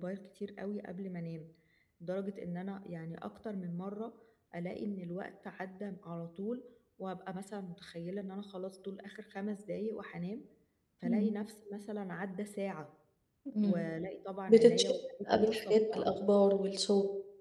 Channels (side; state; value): both; identical; correlation 1.00